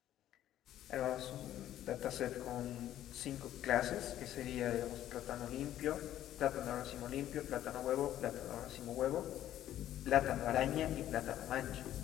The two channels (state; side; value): quieter; right; 12.3 dB